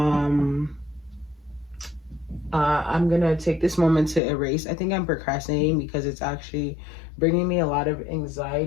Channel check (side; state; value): right; drops out; at 4.2 s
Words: I'm gonna take this moment to erase. I think I'm procrastinating because it's actually bringing me a lot of